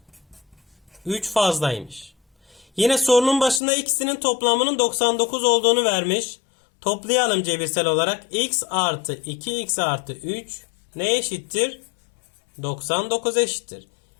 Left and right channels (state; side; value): drops out; right; at 3.6 s